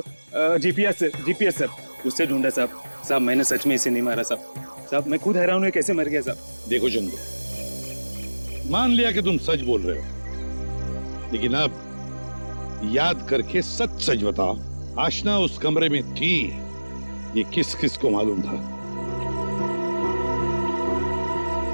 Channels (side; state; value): both; inverted; correlation -1.00